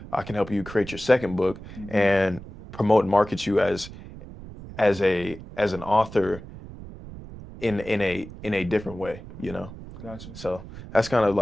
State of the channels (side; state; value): right; noise; rumble, 14 dB below the sound